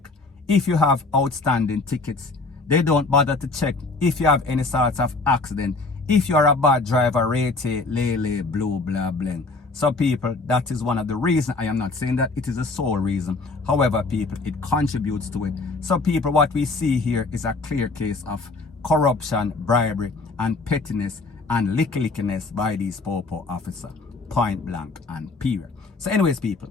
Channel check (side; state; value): right; quieter; 3.6 dB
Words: if you have outstanding tickets. They don't bother to check if you have any sorts of accident. If you are a bad driver, rate, lele, blue, blah, bling. So people, that is one of the reasons. I am not saying that it is the sole reason. However, people, it contributes to it. So people, what we see here is a clear case of corruption, bribery, and pettiness and lickiness by these popo officer, point blank and period. So anyways, people,